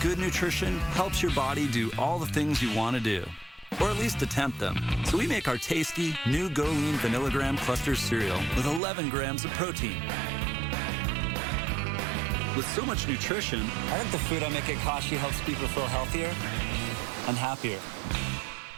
good nutrition helps your body do all the things you want to do, or at least attempt them. So we make our tasty, new Go Lean Vanillagram Cluster cereal with 11 grams of protein. With so much nutrition, I think the food I make at Kashi helps people feel healthier and happier.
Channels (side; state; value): left; drops out; at 8.8 s